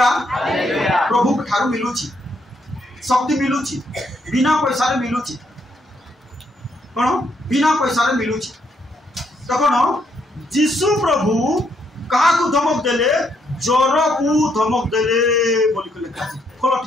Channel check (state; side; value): normal; both; correlation 0.74